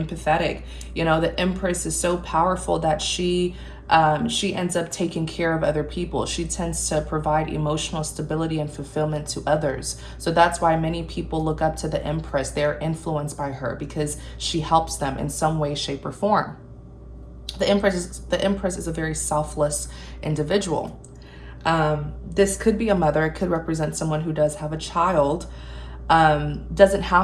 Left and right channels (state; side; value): identical; both; correlation 1.00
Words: You know, the Empress is so powerful that she ends up taking care of other people. She tends to provide emotional stability and fulfillment to others. So that's why many people look up to the Empress. They're influenced by her because she helps them in some way, shape, or form. The Empress is a very selfless individual. This could be a mother. It could represent someone who does have a child. Doesn't